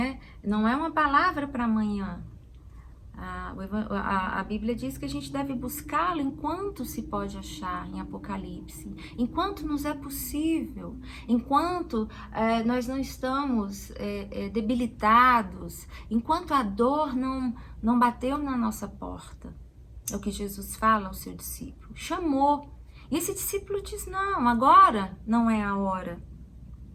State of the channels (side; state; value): both; identical; correlation 1.00